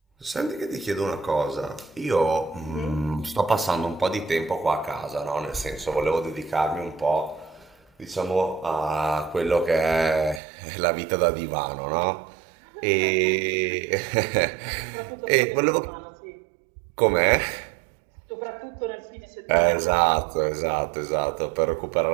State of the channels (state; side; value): drops out; left; at 10.4 s